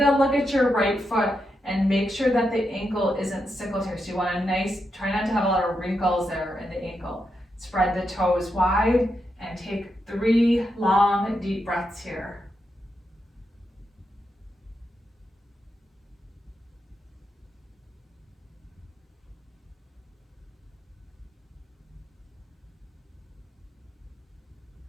look at your right foot and make sure that the ankle isn't sickled here. So you want try not to have a lot of wrinkles there in the ankle. Spread the toes wide and take 3 long, deep breaths here.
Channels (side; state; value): both; normal; correlation 0.85